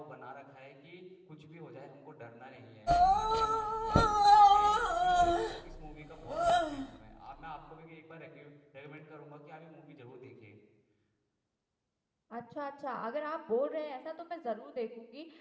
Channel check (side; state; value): both; identical; correlation 1.00